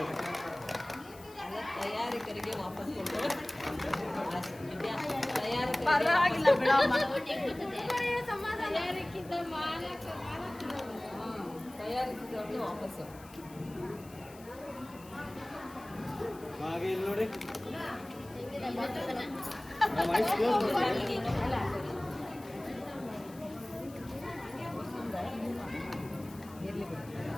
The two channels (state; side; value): noise; left; hiss, 22 dB below the sound